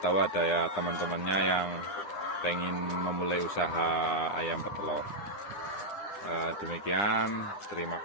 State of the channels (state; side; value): late; right; 9.9 ms